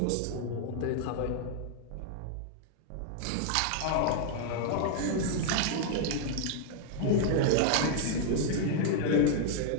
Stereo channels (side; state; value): both; different; correlation 0.00